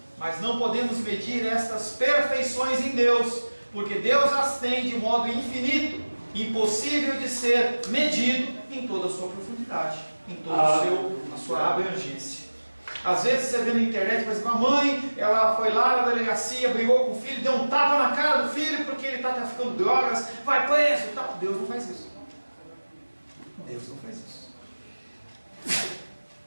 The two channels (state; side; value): inverted; both; correlation -1.00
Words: mas não podemos medir estas perfeições em Deus, porque Deus as tem de modo infinito, impossível de ser medido em toda a sua profundidade, em toda a sua abrangência. Às vezes você vê na internet, por exemplo, a mãe, ela foi lá na delegacia, brigou com o filho, deu um tapa na cara do filho porque ele está traficando drogas, vai preso e tal. Deus não faz isso. Deus não faz isso.